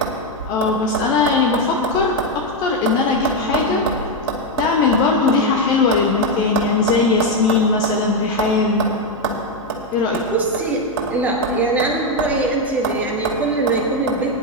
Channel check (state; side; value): noise; left; hum, 24 dB below the sound